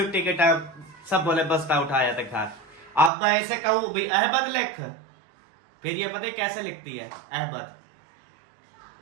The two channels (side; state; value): left; drops out; at 3.1 s